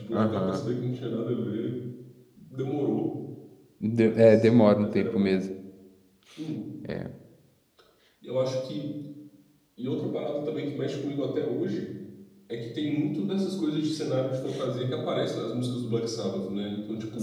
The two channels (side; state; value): both; identical; correlation 1.00